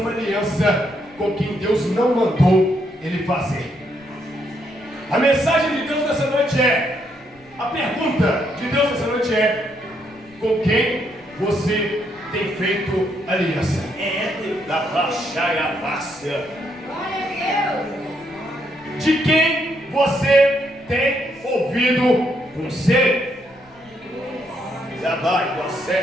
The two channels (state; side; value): noise; left; rumble, 29 dB below the sound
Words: aliança com quem Deus não mandou ele fazer. A mensagem de Deus nessa noite é, a pergunta de Deus nessa noite é: com quem você tem feito aliança? Da baixaia fácil. De quem você tem ouvido conselho? Já vai,